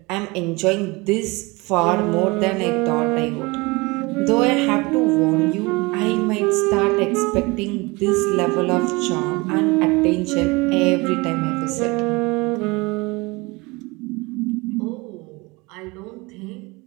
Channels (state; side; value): quieter; left; 25.0 dB